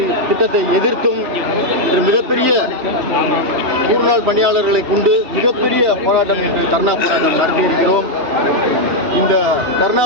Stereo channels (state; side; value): late; left; 2.9 ms